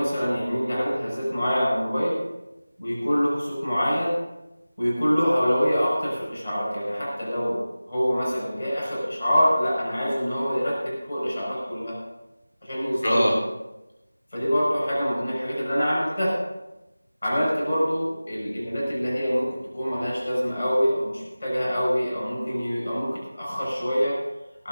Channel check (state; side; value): inverted; both; correlation -0.97